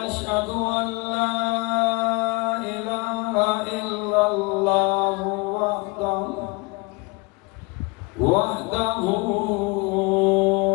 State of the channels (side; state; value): right; quieter; 27.1 dB